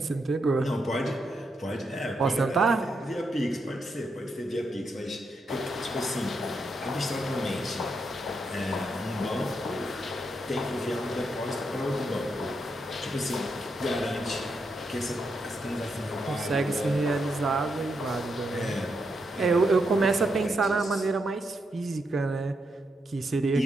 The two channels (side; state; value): both; normal; correlation 0.82